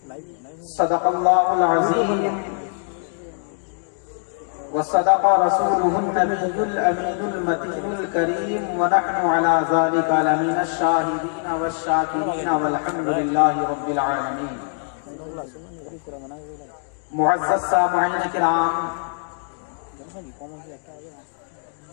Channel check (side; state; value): right; silent; 61 dB below the other